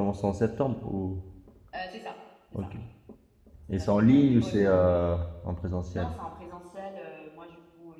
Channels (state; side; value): identical; both; correlation 1.00